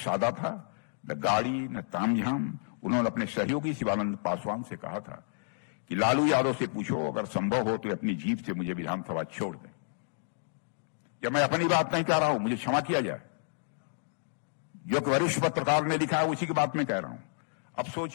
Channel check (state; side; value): silent; right; digital silence